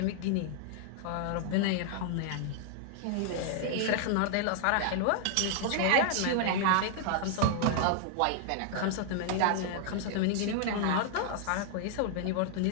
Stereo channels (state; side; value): different; both; correlation 0.00